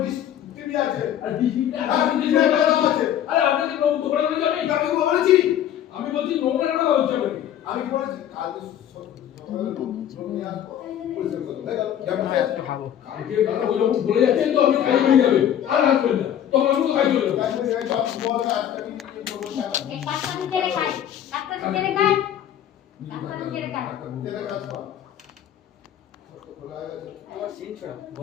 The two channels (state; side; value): quieter; right; 10.5 dB